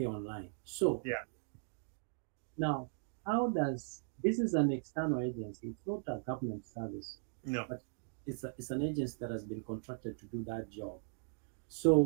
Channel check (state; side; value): silent; left; digital silence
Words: online. So yeah. Now, how does this is an external agency? It's not a government service. No. But it's an agency that has been contracted to do that job.